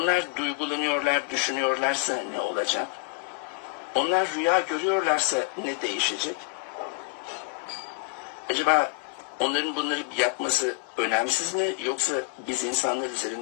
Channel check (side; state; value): right; quieter; 30.7 dB